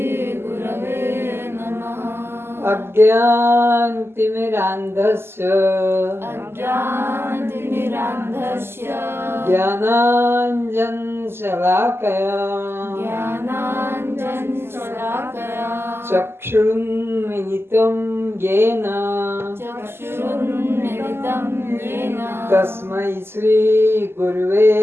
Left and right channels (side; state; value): left; late; 0.12 ms